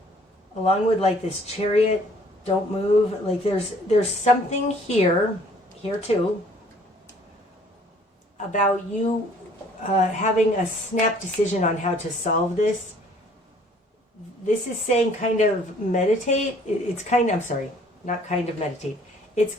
along with like this Chariot, don't move, like there's something here too, about you having a snap decision on how to solve this. This is saying kind of meditate. It's kind of, I'm sorry, not kind of meditate. It's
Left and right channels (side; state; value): both; normal; correlation 0.57